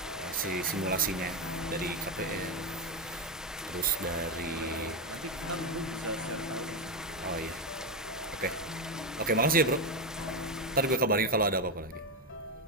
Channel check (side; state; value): both; normal; correlation 0.09